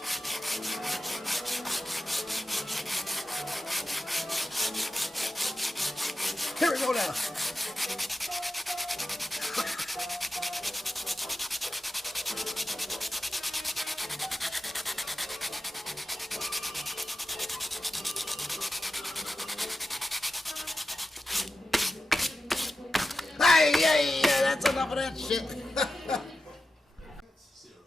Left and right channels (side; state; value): both; normal; correlation 0.91